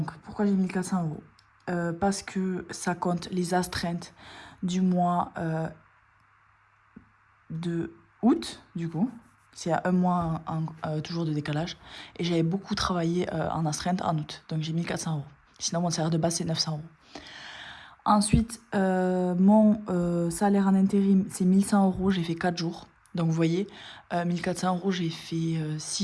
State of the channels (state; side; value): identical; both; correlation 1.00